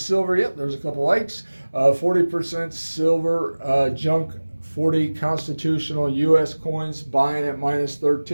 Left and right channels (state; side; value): inverted; both; correlation -1.00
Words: yep, there's a couple Ikes. 40% silver, junk 40 constitutional U.S. coins, buying at